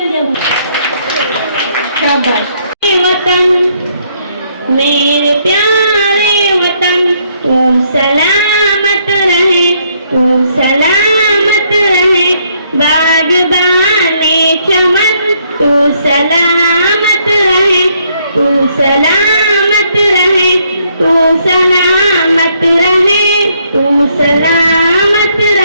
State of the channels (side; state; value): both; inverted; correlation -0.70